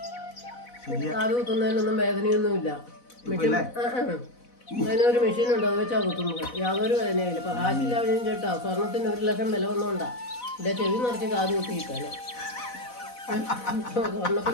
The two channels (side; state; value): right; late; 4.0 ms